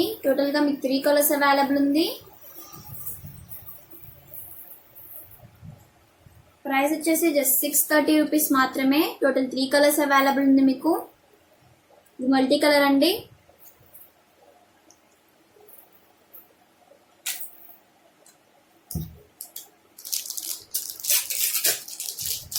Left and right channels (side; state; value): both; identical; correlation 1.00